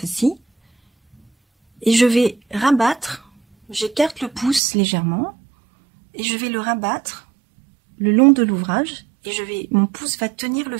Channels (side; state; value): left; drops out; at 4.6 s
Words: et je vais rabattre, j'écarte le pouce légèrement, et je vais le rabattre le long de l'ouvrage, et mon pouce va tenir le